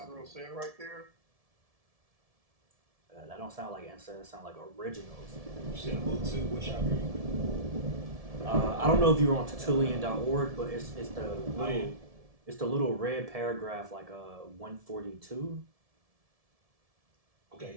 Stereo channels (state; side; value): late; left; 1.7 ms